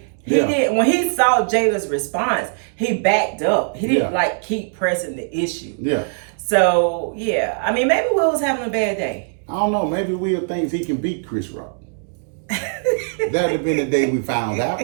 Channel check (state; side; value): silent; left; digital silence